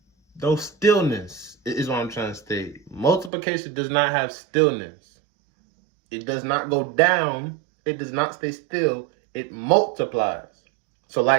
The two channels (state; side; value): drops out; left; at 3.3 s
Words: no stillness is what I'm trying to state. Multiplication does not have stillness. It does not go down. It does not stay still. It multiplies. So